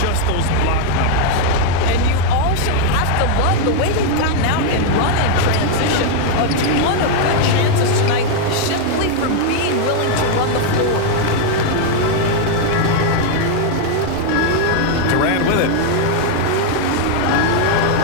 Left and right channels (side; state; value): both; different; correlation 0.00